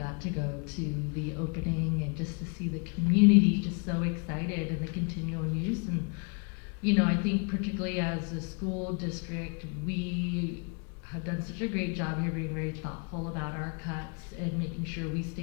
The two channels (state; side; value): quieter; right; 36.8 dB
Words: to go to the opening and just to see the community just so excited and the continual use. And, I think particularly as a school district, we have done such a great job here being very thoughtful about our cuts and making sure we